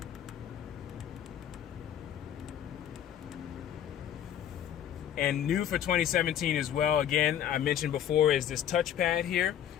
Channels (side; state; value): right; quieter; 10.2 dB